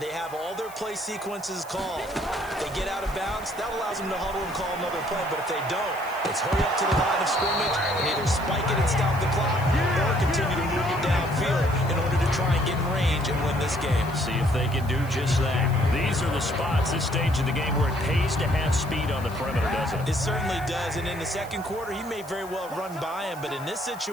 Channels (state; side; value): noise; left; hiss, 20 dB below the sound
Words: they have all their play sequences called. If they get out of bounds, that allows them to huddle and call another play, but if they don't, it's hurry up to the line of scrimmage and either spike it and stop the clock or continue to move it downfield in order to try and get in range and win this game. See if they can do just that. These are the spots, this stage of the game, where it pays to have speed on the perimeter, doesn't it? It certainly does, and in the second quarter, he may very well run by him, but in this